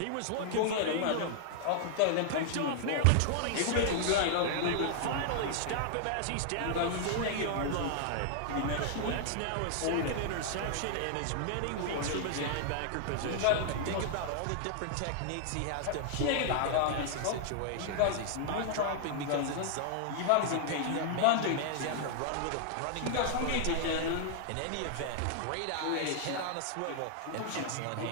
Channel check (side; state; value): both; different; correlation 0.00